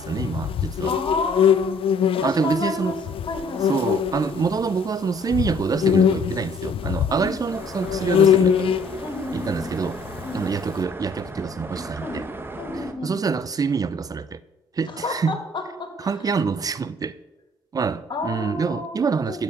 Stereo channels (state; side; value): normal; both; correlation 0.59